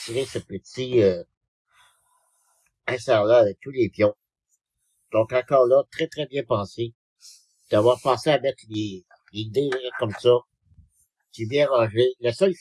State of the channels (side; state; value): both; identical; correlation 1.00